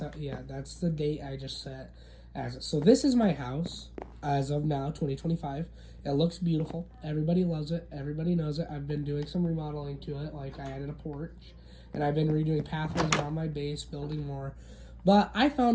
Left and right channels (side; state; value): both; identical; correlation 1.00